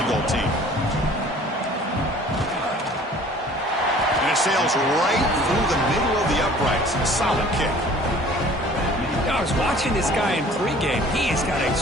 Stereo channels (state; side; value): normal; both; correlation 0.50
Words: goal team. And it sails right through the middle of the uprights. A solid kick. I was watching this guy in pregame. He has got a